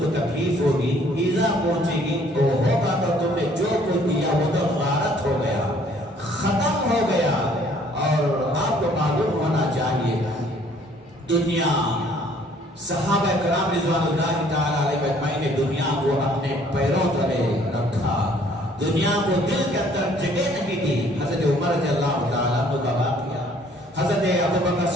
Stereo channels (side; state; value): both; normal; correlation 0.59